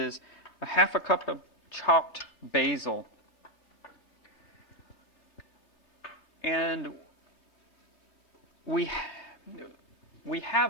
1/2 cup of chopped basil. And we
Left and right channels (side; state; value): right; late; 3.4 ms